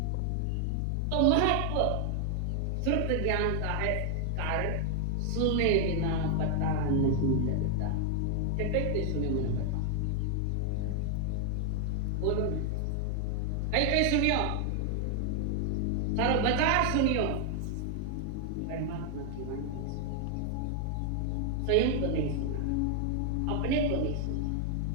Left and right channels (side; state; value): both; different; correlation 0.00